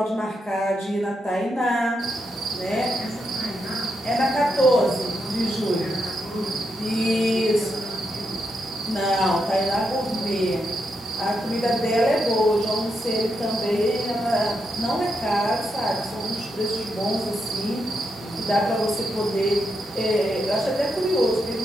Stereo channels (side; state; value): both; normal; correlation 0.83